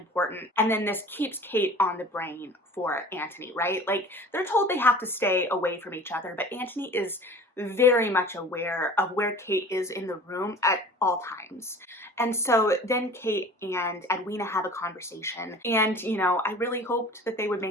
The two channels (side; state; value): both; normal; correlation 0.43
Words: And then this keeps Kate on the brain for Anthony, right? Like, they're told they have to stay away from each other, but Anthony is very much aware of where Kate is in the room at all times. And so then Kate and Edwina have a conversation. And, you know, I really hoped that they would